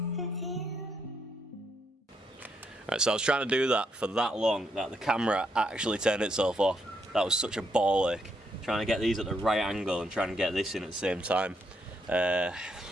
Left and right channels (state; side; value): normal; both; correlation 0.76